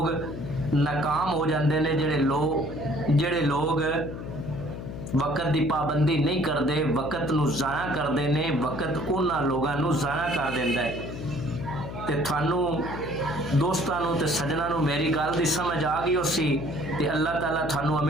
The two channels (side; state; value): left; noise; hum, 8 dB below the sound